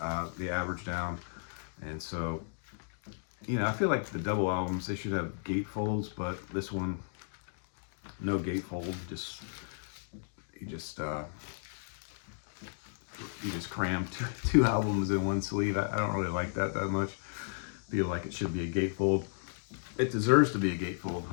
average down. And so, you know, I feel like the double albums, they should have gatefolds, but this one, no gatefold. You just cram two albums in one sleeve. I don't really like that much. Feel like it should be a gatefold. It deserves to be a gatefold,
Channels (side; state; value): right; silent; digital silence